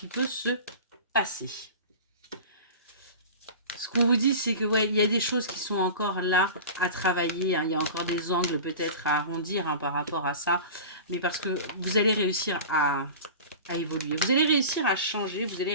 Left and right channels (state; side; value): inverted; both; correlation -0.34